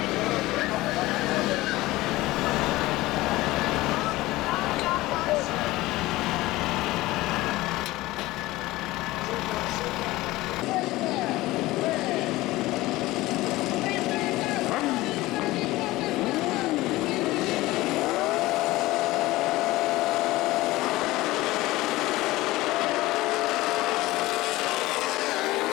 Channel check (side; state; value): right; quieter; 18.7 dB